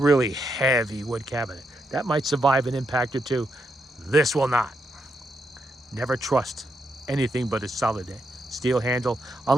heavy wood cabinet. That might survive an impact or two. This will not. Never trust anything but a solid steel handle,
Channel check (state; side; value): normal; both; correlation 0.80